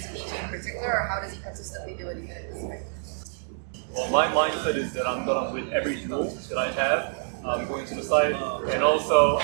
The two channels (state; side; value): silent; left; 60 dB below the other